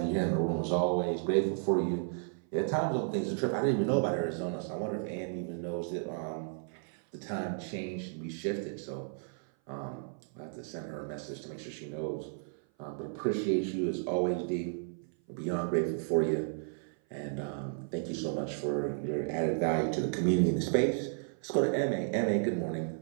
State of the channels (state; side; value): silent; left; 56 dB below the other